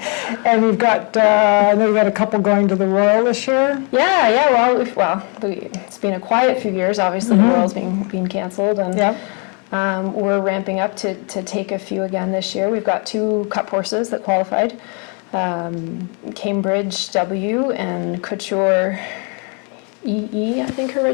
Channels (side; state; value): right; quieter; 36.3 dB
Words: And we've got, I know we've got a couple going to the Royal this year. Yeah. Well, it's been a quiet few years. Obviously, the Royal's being canceled, and we're ramping up to take a few again this year. We've got 2 cup horses that qualified, Cambridge W and Couture EE, I think her